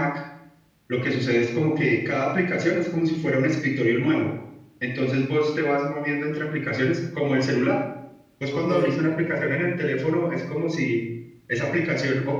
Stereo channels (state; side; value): identical; both; correlation 1.00